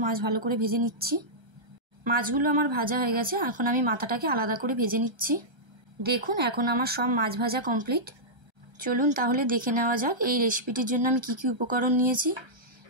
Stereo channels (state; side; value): late; left; 1.3 ms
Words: মাছ ভালো করে ভেজে নিচ্ছি। মাছগুলো আমার ভাজা হয়ে গেছে, এখন আমি মাথাটাকে আলাদা করে ভেজে নিচ্ছি। দেখুন, এখন আমার সব মাছ ভাজা কমপ্লিট। চলুন তাহলে দেখে নেওয়া যাক এই রেসিপিটির জন্য আমি কি কি উপকরণ নিয়েছি।